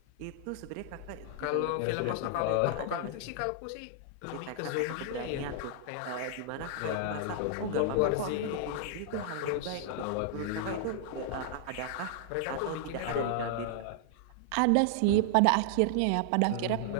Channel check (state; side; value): different; both; correlation -0.01